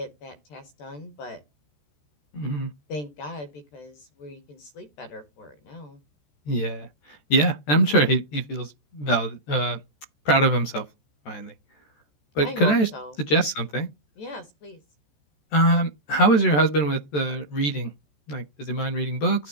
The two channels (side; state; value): right; late; 14 ms